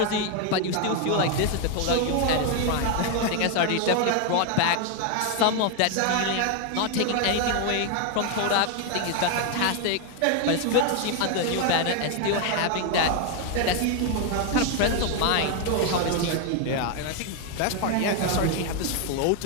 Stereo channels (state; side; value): different; both; correlation 0.01